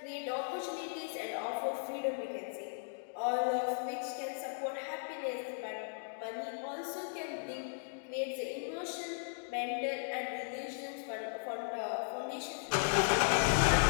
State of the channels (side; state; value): right; silent; digital silence